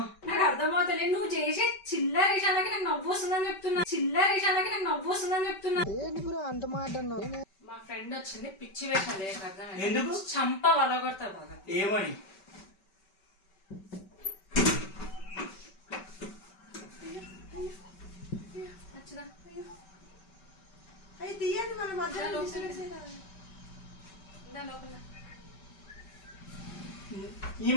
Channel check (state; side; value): late; right; 5.2 ms